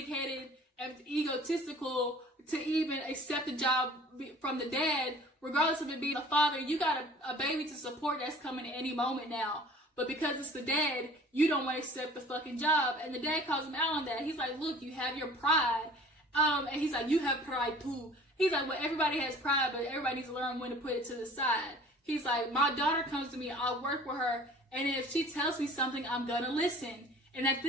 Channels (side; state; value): both; normal; correlation 0.47